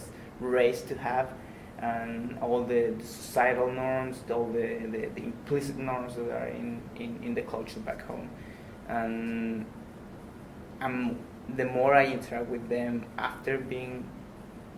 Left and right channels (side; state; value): both; identical; correlation 1.00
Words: raised to have, and all the societal norms, all the implicit norms that are in the culture back home. And the more I interact with them after being,